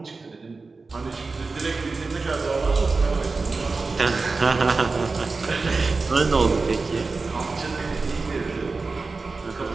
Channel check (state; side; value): quieter; left; 4.0 dB